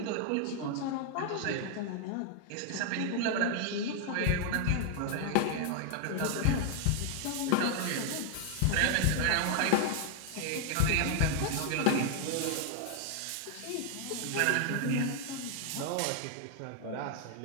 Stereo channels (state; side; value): different; both; correlation 0.00